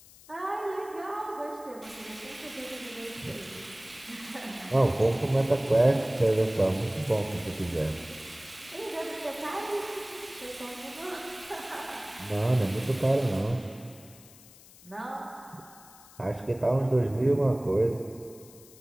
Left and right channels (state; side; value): noise; left; hiss, 22 dB below the sound